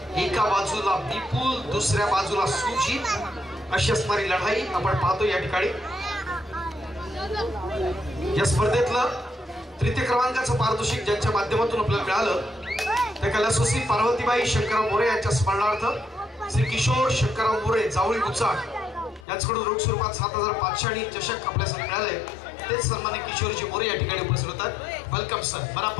एका बाजूला विपुल, दुसऱ्या बाजूला सुजित अशी असणारी लढाई आपण पाहतो या ठिकाणी. या स्पर्धेतलं तृतीय क्रमांकाचं पारितोषिक ज्यांच्या माध्यमातून आपल्याला मिळालं त्या कैलासवासी पार्वतीबाई शंकरराव मोरे यांच्या स्मरणार्थ श्री किशोर शंकरराव मोरे जावळी गुचाळ यांच्याकडून रोख स्वरूपात 7,500 आणि चषक आपल्यासाठी मिळाले. तेच सन्मान्य किशोरजी मोरे या ठिकाणी उपस्थित होतात. वेलकम सर,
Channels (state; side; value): drops out; right; at 19.2 s